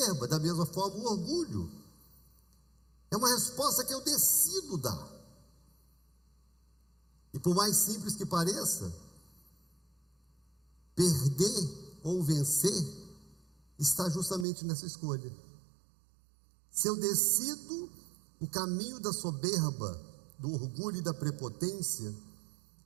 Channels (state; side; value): drops out; left; at 14.5 s